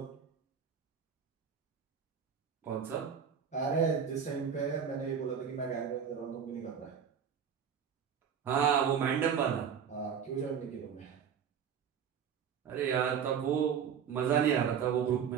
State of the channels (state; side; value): quieter; left; 7.5 dB